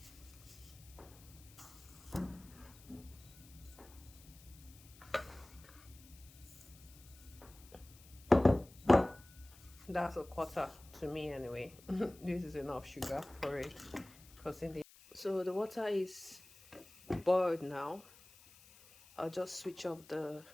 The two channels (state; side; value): noise; left; hiss, 22 dB below the sound